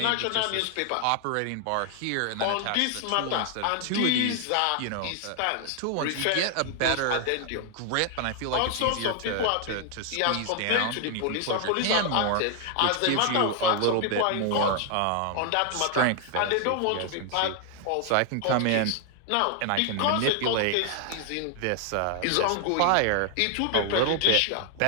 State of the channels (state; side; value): different; both; correlation 0.00